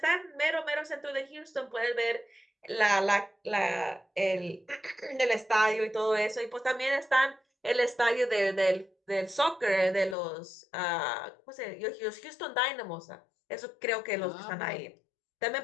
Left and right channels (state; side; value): drops out; right; at 10.2 s